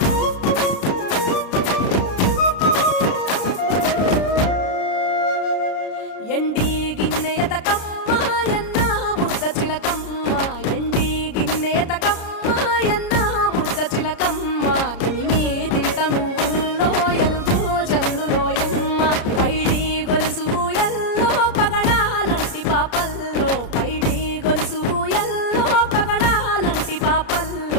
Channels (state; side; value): late; right; 33 ms